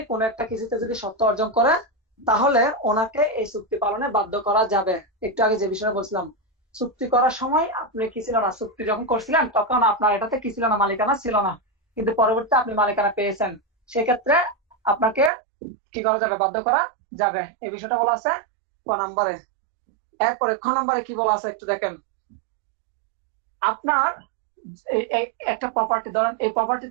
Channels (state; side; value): drops out; left; at 15.3 s